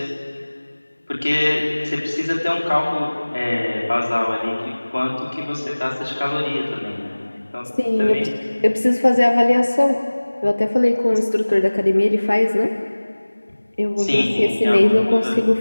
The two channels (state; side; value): inverted; both; correlation -1.00